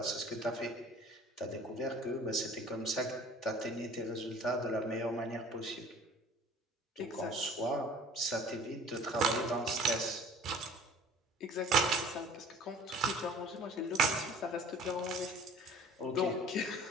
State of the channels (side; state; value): both; normal; correlation 0.48